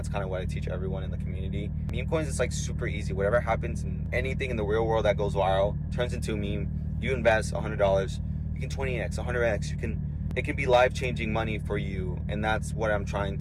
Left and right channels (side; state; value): both; identical; correlation 1.00